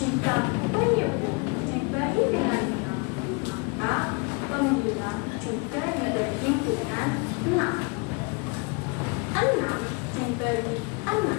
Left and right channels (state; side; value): quieter; right; 31.6 dB